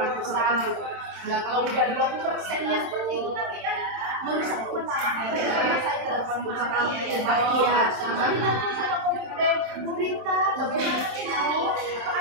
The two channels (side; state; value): left; late; 27 ms